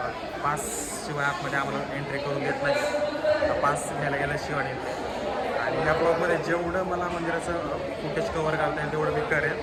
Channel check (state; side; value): identical; both; correlation 1.00